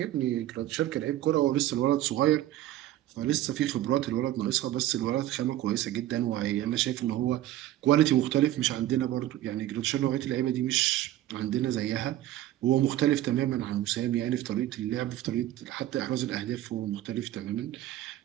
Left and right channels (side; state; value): left; quieter; 13.9 dB